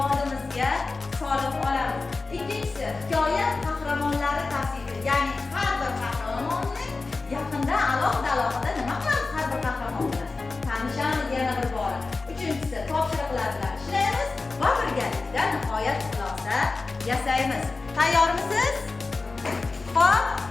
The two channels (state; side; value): quieter; right; 3.8 dB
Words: solib olamiz. Ikkinchisi hikoya qahramonlari tavsifi, ya'ni har bir qahramonning yaqinda alohida nima qilamiz har bir qahramon bilan tanishamiz yana bir bora. Uchinchisi topshiriqlar bilan ishlaymiz va birgalikda nihoyat xulosa yasaymiz. Tayyormisiz? Xo'p,